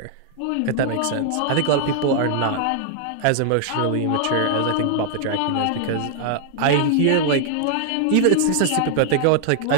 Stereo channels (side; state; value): both; different; correlation 0.00